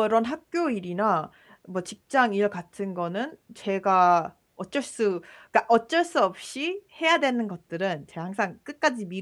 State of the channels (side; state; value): both; identical; correlation 1.00